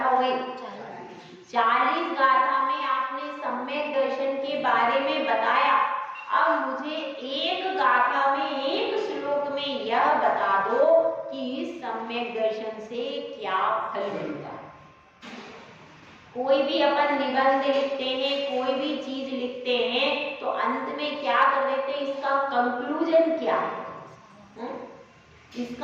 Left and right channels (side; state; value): both; identical; correlation 1.00